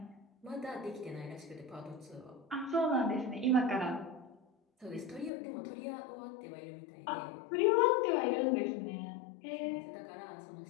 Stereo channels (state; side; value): drops out; right; at 5.3 s